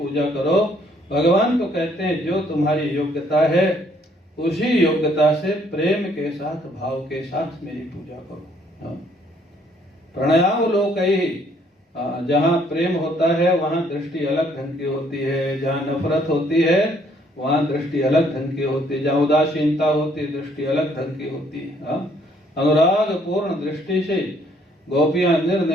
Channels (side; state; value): both; normal; correlation 0.65